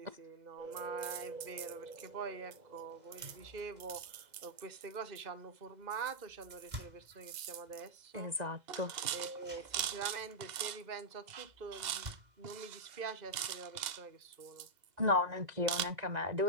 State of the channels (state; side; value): late; left; 2.0 ms